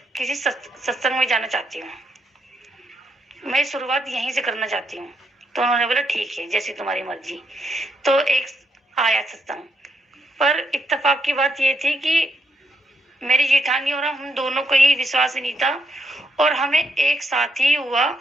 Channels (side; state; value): both; normal; correlation 0.77